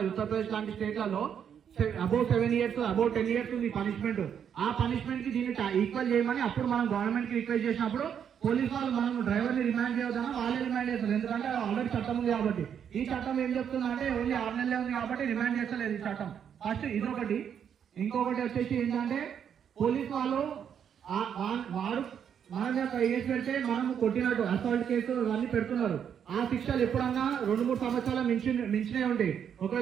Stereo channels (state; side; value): quieter; left; 8.3 dB